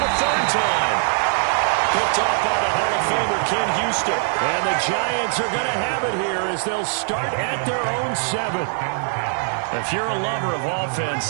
3rd time. Picked off by the Hall of Famer Ken Houston. And the Giants are going to have it here as they'll start at their own 7. If you're a lover of offense,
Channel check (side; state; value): left; silent; digital silence